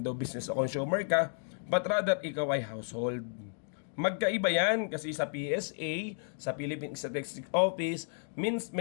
business o consumer ka, but rather, ikaw ay household. Magkaiba yan kasi sa PSA, sa Philippine Statistics Office, means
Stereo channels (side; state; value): right; silent; digital silence